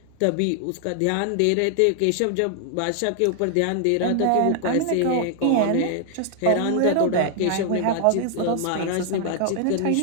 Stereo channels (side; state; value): both; different; correlation 0.00